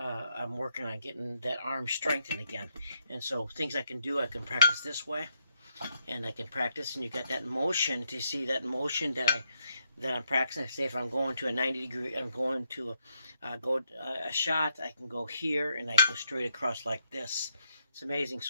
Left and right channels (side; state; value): both; inverted; correlation -0.77